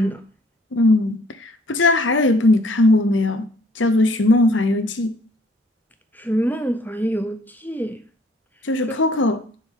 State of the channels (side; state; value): both; normal; correlation 0.59